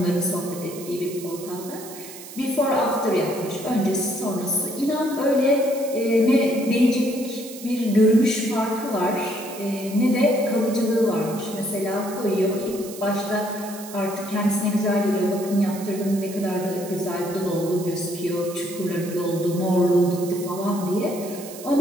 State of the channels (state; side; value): noise; right; hiss, 14 dB below the sound